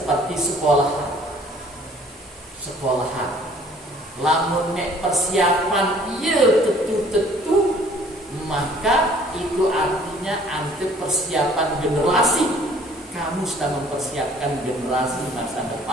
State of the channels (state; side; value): normal; both; correlation 0.55